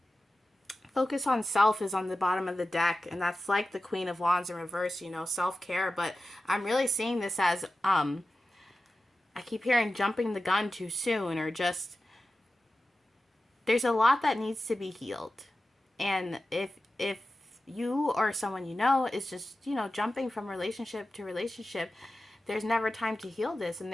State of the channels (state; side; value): normal; both; correlation 0.94